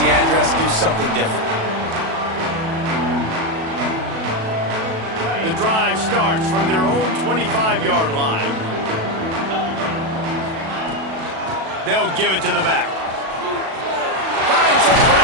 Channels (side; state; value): left; late; 37 ms